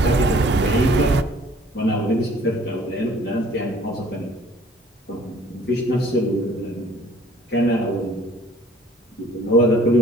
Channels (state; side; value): normal; both; correlation 0.55